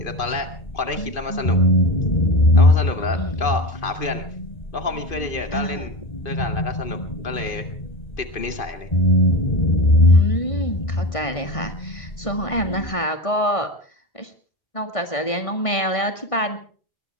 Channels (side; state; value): right; late; 1.5 ms